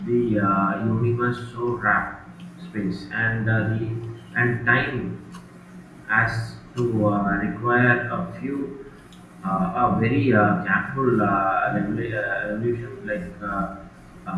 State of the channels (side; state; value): both; identical; correlation 1.00